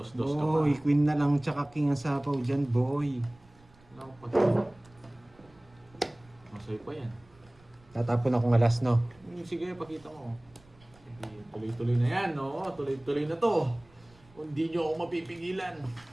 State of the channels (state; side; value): noise; right; rumble, 28 dB below the sound